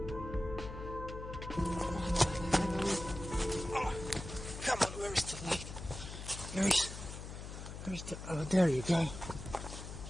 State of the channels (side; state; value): left; noise; hum, 9 dB below the sound